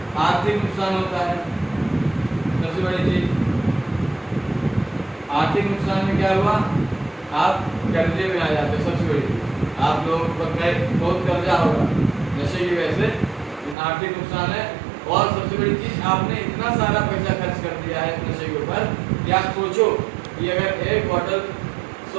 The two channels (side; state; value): left; drops out; at 13.8 s